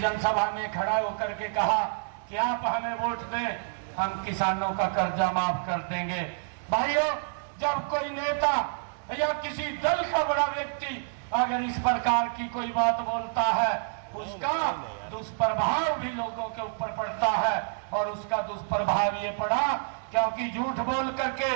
जनसभा में खड़ा होकर के कहा कि आप हमें वोट दें, हम किसानों का कर्जा माफ कर देंगे। भाइयों, जब कोई नेता या किसी दल का बड़ा व्यक्ति अगर इस प्रकार की कोई बात बोलता है, उसका दुष्प्रभाव भी लोगों के ऊपर पड़ता है। और उसका दुष्प्रभाव ये पड़ा क्योंकि झूठ बोल करके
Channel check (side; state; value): left; silent; digital silence